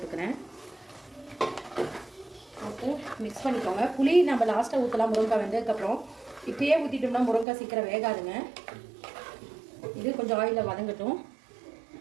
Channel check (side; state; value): left; drops out; at 7.5 s